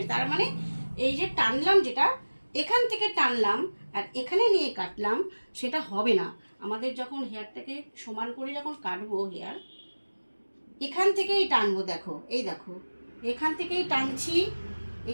তার মানে এই যে টানলাম, যেটা এখান থেকে টানলাম আর এখানে নিয়ে কাটলাম, সেটা হবে না। আমাদের যখন হেয়ারটাকে সমান করে যখন কাটবো, হেয়ার এখান থেকেই টানবো। দেখো, এই দেখো, এখান থেকেই টানছি,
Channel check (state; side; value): inverted; both; correlation -1.00